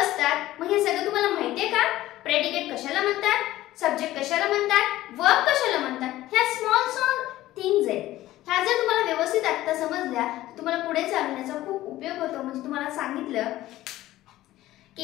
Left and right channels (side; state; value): right; quieter; 15.5 dB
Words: मग हे सगळं तुम्हाला माहिती आहे का प्रेडिकेट कशाला म्हणतात सब्जेक्ट कशाला म्हणतात वर्ब कशाला म्हणतात ह्या स्मॉल थिंग्स आहेत ह्या जर तुम्हाला व्यवस्थित आता समजल्या तुम्हाला पुढे चालण्याचा खूप उपयोग होतो म्हणजे तुम्हाला सांगितलं